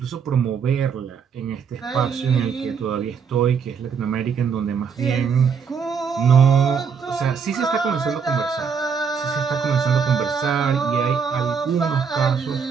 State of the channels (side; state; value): left; quieter; 6.3 dB